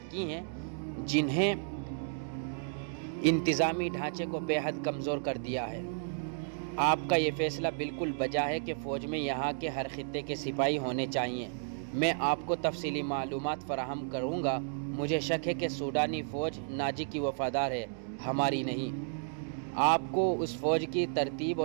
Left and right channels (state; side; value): silent; left; digital silence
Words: کی ہیں جنہیں انتظامی ڈھانچے کو بے حد کمزور کر دیا ہے۔ آپ کا یہ فیصلہ بالکل بجا ہے کہ فوج میں یہاں کے ہر خطے کے سپاہی ہونے چاہیے۔ میں آپ کو تفصیلی معلومات فراہم کروں گا۔ مجھے شک ہے کہ سوڈانی فوج ناجی کی وفادار ہے، ہماری نہیں۔ آپ کو اس فوج کی ترتیب